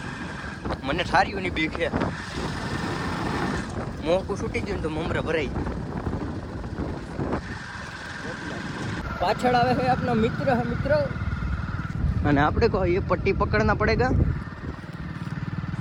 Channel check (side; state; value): both; identical; correlation 1.00